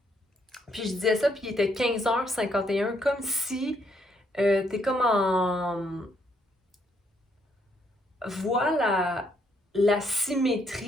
Puis je disais ça, puis il était 15h51, comme si t'es comme en... Voilà la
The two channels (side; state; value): both; normal; correlation 0.72